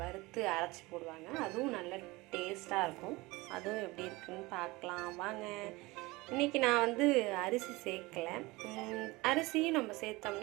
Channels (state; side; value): quieter; left; 22.1 dB